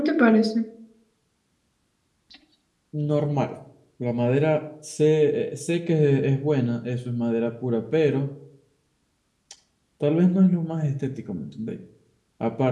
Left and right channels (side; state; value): both; identical; correlation 1.00